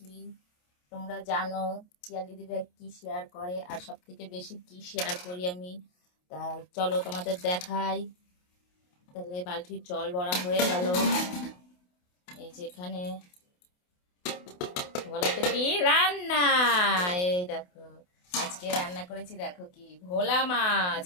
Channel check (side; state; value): right; late; 28 ms